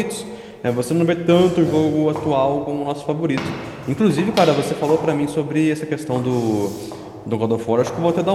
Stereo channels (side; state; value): both; identical; correlation 1.00